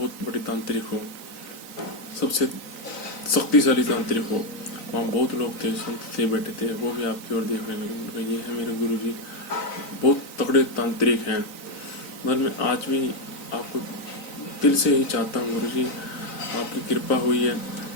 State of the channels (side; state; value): right; late; 3.9 ms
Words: बड़े तांत्रिक हो, सबसे शक्तिशाली तांत्रिक हो। वहाँ बहुत लोग थे, संत थे, बैठे थे, वो भी आपकी ओर देखने लगे। उनका ये है मेरे गुरुजी, बहुत तगड़े तांत्रिक हैं। मगर मैं आज भी आपको दिल से ही चाहता हूँ गुरुजी, आपकी कृपा हुई है,